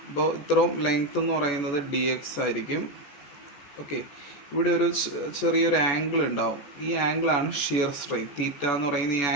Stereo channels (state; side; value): late; right; 14 ms